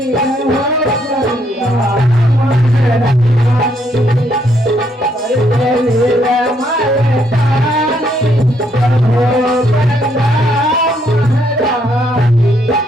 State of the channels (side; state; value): both; normal; correlation 0.72